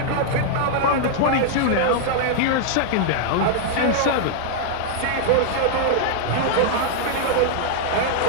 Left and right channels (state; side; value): different; both; correlation -0.01